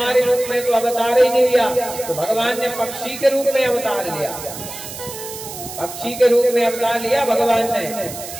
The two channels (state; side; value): noise; right; hiss, 11 dB below the sound